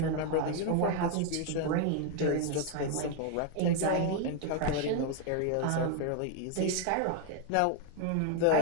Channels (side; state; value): both; different; correlation 0.01